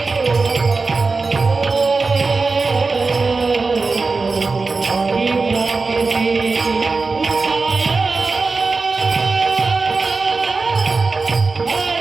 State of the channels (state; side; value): quieter; left; 4.0 dB